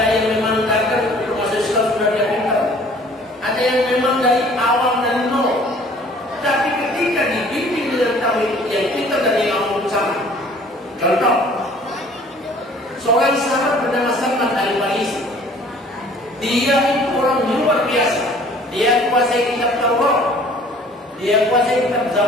yang memang karena untuk masuk Islam sudah dia pintar, ada yang memang dari awam dan nol. Tapi ketika dibimbing dengan tauhid yang pintar dan yang awam sama. Contoh, seorang sahabat bernama Salman Al-Farisi. Dia itu orang luar biasa. Dia kuasai kitab Taurat, dia kuasai kitab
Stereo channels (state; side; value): normal; both; correlation 0.53